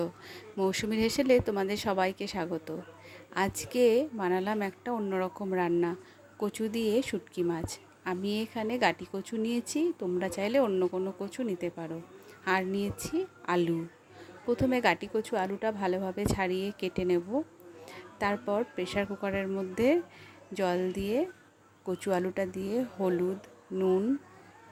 মৌসুমীর হেসেলে তোমাদের সবাইকে স্বাগত। আজকে বানালাম একটা অন্যরকম রান্না, কচু দিয়ে শুটকি মাছ। আমি এখানে গাটি কচু নিয়েছি, তোমরা চাইলে অন্য কোনো কচু নিতে পারো। আর নিয়েছি আলু। প্রথমে গাটি কচু আলুটা ভালোভাবে ছাড়িয়ে কেটে নেব। তারপর প্রেসার কুকারের মধ্যে জল দিয়ে কচু আলুটা দিয়ে হলুদ, নুন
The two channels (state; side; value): identical; both; correlation 1.00